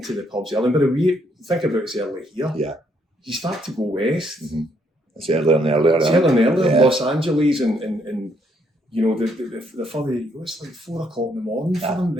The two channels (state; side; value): normal; both; correlation 0.71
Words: to the pubs early. But we think about it's early here. Yeah. You start to go west. Mm-hmm. It's earlier and earlier. It's earlier and earlier. Yeah. Los Angeles and you know, the further you go, it's like 4 o'clock in the morning for them,